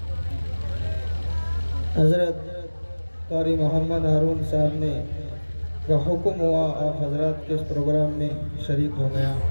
حضرت قاری محمد ہارون صاحب نے کا حکم ہوا, آپ حضرات کے اس پروگرام میں شریک ہو گیا.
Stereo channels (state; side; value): inverted; both; correlation -1.00